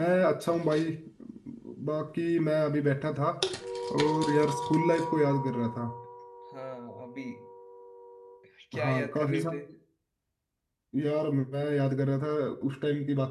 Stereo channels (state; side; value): identical; both; correlation 1.00